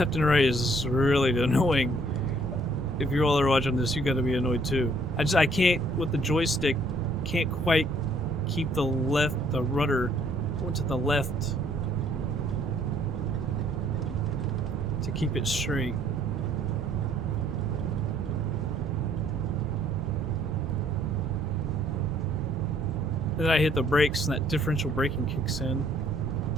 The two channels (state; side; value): normal; both; correlation 0.63